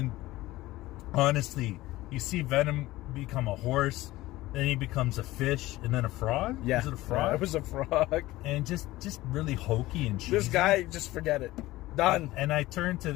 honestly, you see Venom become a horse, then he becomes a fish, and then a frog. Yeah, was it a frog? It was a frog. And just really hokey and cheesy. This guy, just forget it. Done. And I turn to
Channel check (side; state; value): right; quieter; 17.8 dB